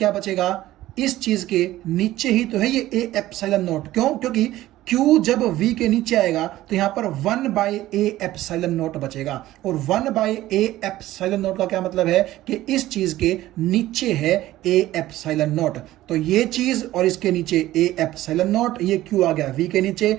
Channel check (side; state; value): left; quieter; 15.4 dB